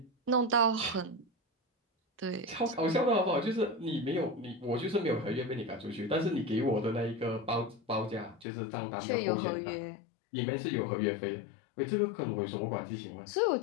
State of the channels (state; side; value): drops out; right; at 8.5 s